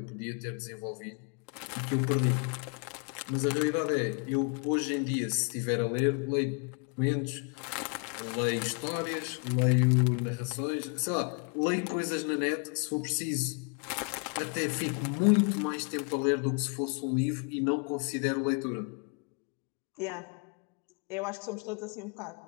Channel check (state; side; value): quieter; right; 38.0 dB